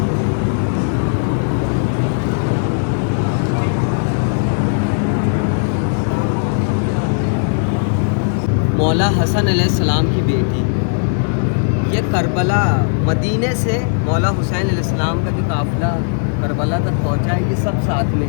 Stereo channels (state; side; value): silent; right; digital silence